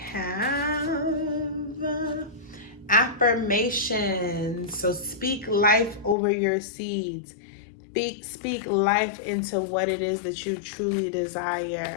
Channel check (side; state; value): right; drops out; at 6.2 s